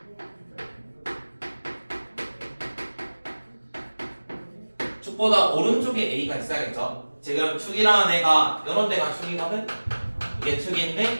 축보다 오른쪽에 A가 있어야겠죠. 지금 축이라는 애가 이런 데가 축이거든. 이게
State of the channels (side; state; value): both; inverted; correlation -1.00